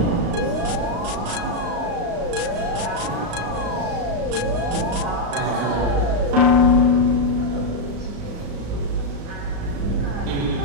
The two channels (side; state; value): left; late; 35 ms